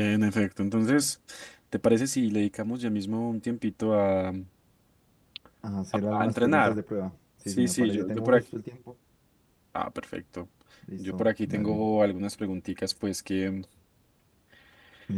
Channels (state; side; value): identical; both; correlation 1.00